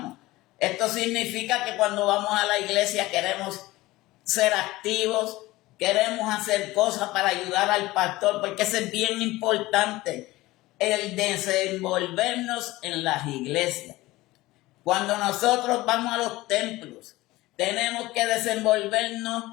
Esto significa que cuando vamos a la iglesia queremos ser activos, queremos hacer cosas para ayudar al pastor, porque eso es bien importante, el desenvolvernos en las iglesias. Cuando nosotros vamos a los templos, tenemos que desenvolvernos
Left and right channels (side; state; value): right; quieter; 18.8 dB